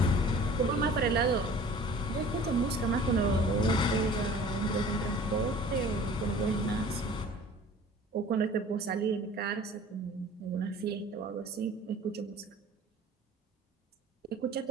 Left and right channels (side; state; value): both; normal; correlation 0.46